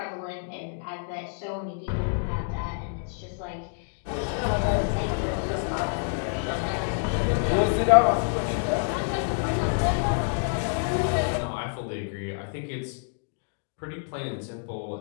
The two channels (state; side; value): silent; right; digital silence